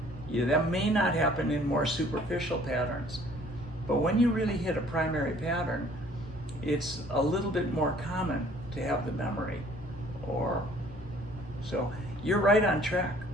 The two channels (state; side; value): normal; both; correlation 0.56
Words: That may not happen in more superficial patterns, but when you really hit a primary pattern, it's a little bit more common to have the memory. So you're right on track